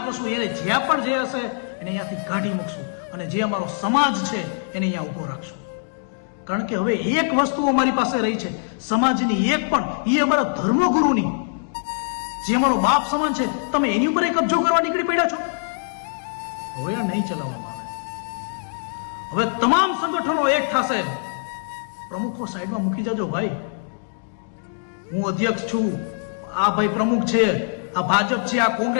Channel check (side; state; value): right; silent; digital silence